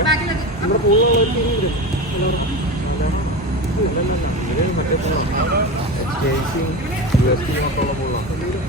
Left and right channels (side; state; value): both; normal; correlation 0.25